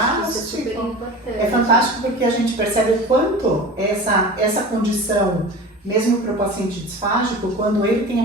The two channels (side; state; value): both; normal; correlation 0.35